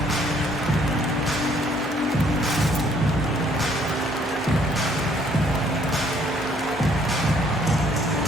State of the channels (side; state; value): both; normal; correlation 0.64